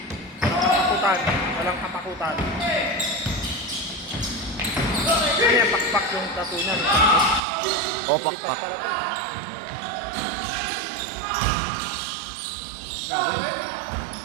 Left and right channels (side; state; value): left; drops out; at 7.4 s